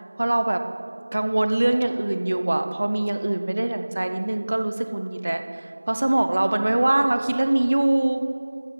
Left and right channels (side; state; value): both; inverted; correlation -1.00